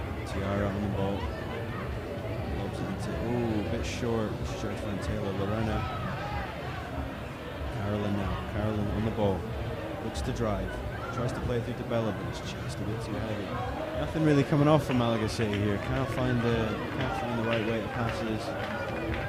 Tiara on the ball. Lobs it into, ooh, a bit short. She tried to find Taylor. Lorena. Carolyn now. Carolyn on the ball. Looks to drive. Tries to play it through to Bella, but it's just a bit too heavy. Nothing really coming off from Malaga City here. Can't find the right way to passes.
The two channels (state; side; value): identical; both; correlation 1.00